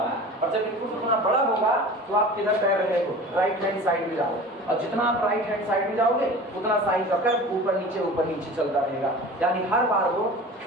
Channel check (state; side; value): normal; both; correlation 0.38